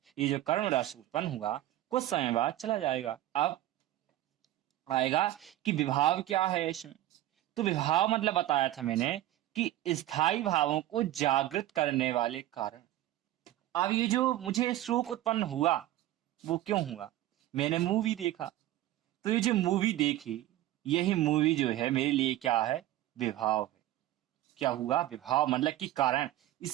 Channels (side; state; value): left; quieter; 14.4 dB